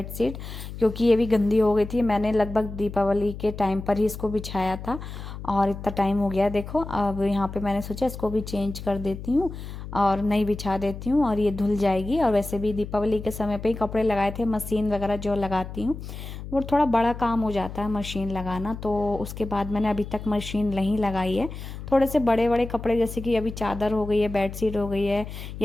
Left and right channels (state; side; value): noise; left; hum, 10 dB below the sound